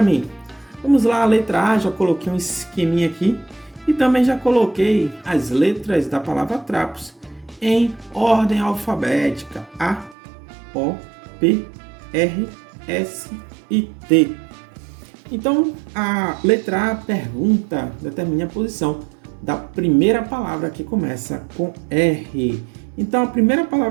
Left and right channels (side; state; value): left; drops out; at 10.2 s